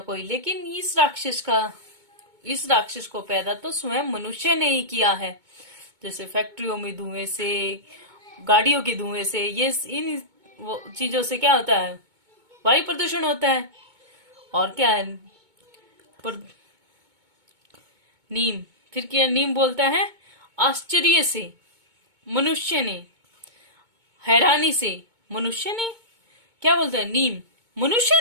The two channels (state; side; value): late; left; 2.2 ms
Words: कोई, लेकिन इस राक्षस को पैदा तो स्वयं मनुष्य ने ही किया है। जैसे फैक्ट्रियों में धुएं से, गाड़ियों के धुएं से, ये इन चीजों से क्या होता है? वायु प्रदूषण होता है। और क्या है? नीम, फिर क्या नीम बोलता है? आश्चर्य से मनुष्य ने, हैरानी से मनुष्य ने, क्या बोलता है नीम? मनुष्य